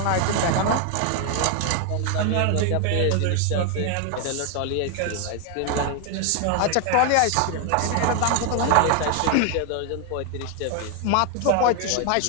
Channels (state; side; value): different; both; correlation 0.00